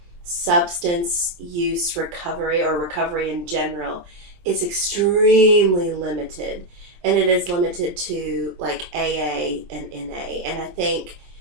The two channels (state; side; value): late; left; 23 ms